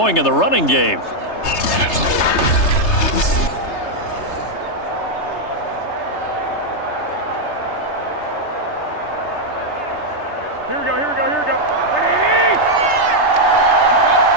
in the running game. Here we go.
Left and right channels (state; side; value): late; right; 3.3 ms